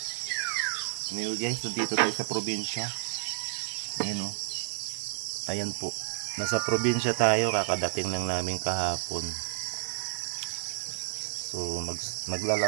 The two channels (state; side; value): silent; left; digital silence